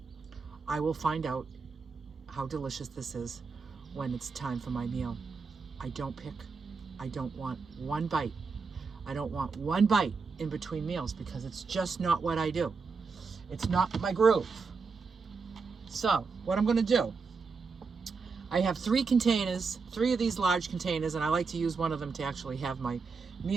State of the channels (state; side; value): quieter; left; 4.8 dB